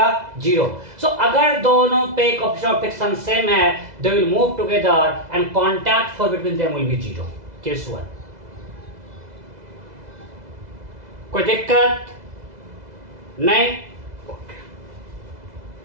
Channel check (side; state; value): left; late; 2.0 ms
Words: 0। सो अगर दोनों पे कोएफिशिएंट ऑफ फ्रिक्शन सेम है, they will move together and contact force between them will be 0। Case 1। कोई दिक्कत नहीं?